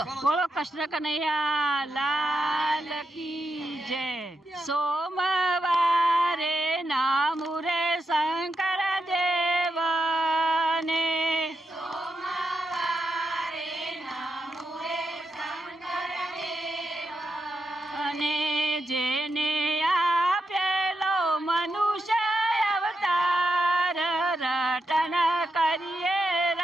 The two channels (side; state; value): both; normal; correlation 0.84